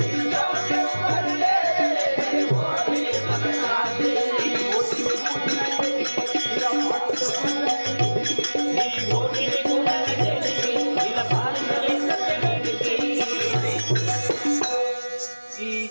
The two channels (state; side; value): inverted; both; correlation -1.00